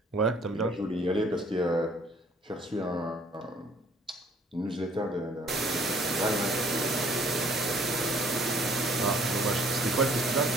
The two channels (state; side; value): normal; both; correlation 0.58